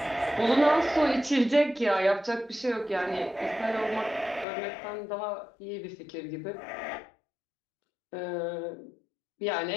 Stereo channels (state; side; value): drops out; right; at 4.5 s